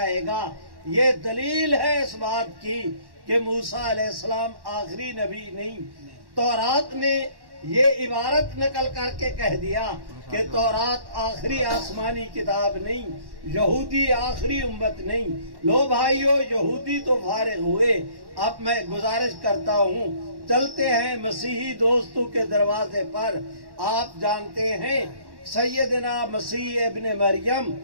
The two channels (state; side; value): late; left; 1.1 ms